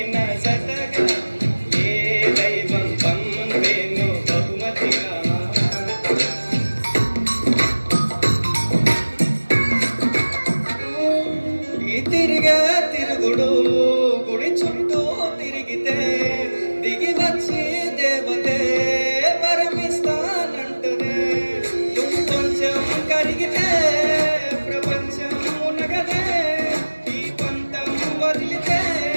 నా జతగా ఏ దైవం పంపేను బహుమతిగా తిరుగుడు గుడి చుట్టూ తిరిగితే దిగి వచ్చి దేవతే వరమిస్తానంటనే నువ్వు కొంచెం కరిగితే ప్రపంచం మునగదే ఈ పంతం వదిలితే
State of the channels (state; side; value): inverted; both; correlation -1.00